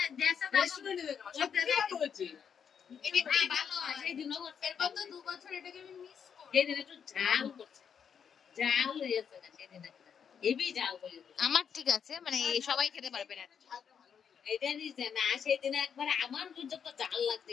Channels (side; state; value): right; quieter; 7.4 dB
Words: আমার ঠিক আছে, মানে সবাই খেতে পারবে না। সেদিন একবার আমার যত জাল